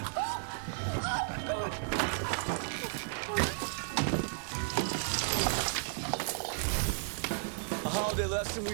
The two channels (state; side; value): silent; left; 55 dB below the other